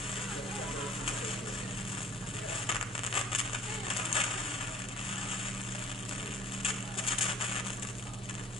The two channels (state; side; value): normal; both; correlation 0.54